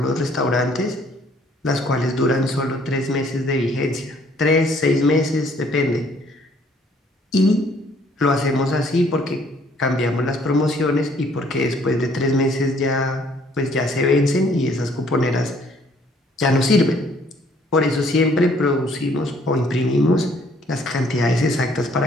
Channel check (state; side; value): normal; both; correlation 0.62